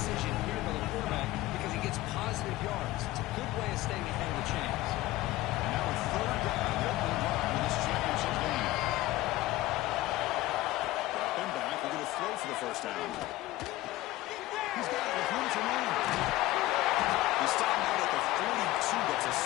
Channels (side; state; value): right; quieter; 17.1 dB